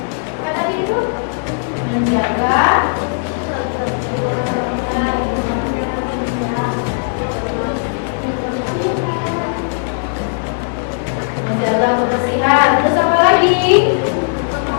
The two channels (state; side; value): silent; right; digital silence